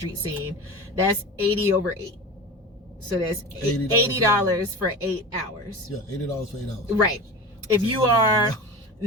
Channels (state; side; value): normal; both; correlation 0.31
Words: scene, that's 80 over 8. So that's $80 for 8 hours. Yeah, $80 for 8 hours. Right. If you are